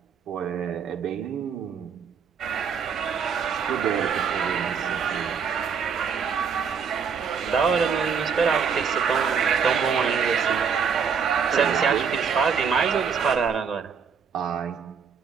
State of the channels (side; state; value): left; quieter; 6.5 dB